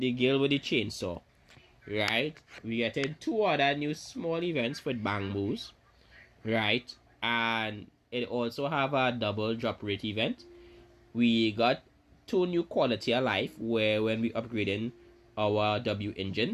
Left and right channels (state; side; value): identical; both; correlation 1.00